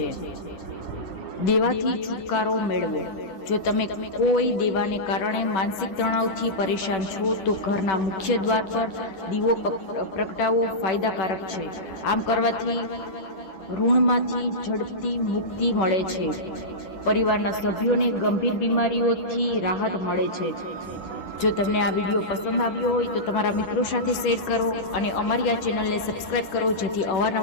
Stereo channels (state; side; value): late; right; 10 ms